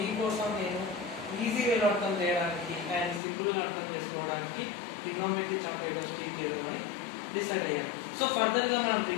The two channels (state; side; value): drops out; right; at 3.2 s